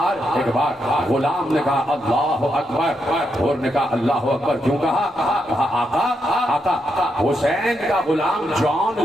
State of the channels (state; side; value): normal; both; correlation 0.82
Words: غلام نے کہا اللہ اکبر, حور نے کہا اللہ اکبر کیوں کہا؟ کہا آقا حسین کا غلام جان